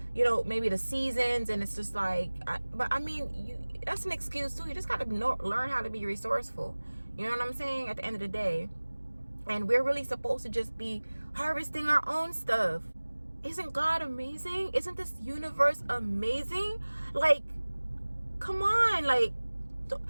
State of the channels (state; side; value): inverted; both; correlation -1.00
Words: maybe the seasons, and it's just like, that's an excuse too. You just got to learn how to be resourceful. You know what I'm saying? At the end of the day. And we're really supposed to just be harvesting our own stuff. Isn't God amazing? Isn't this universe amazing? Like, come on. Like, do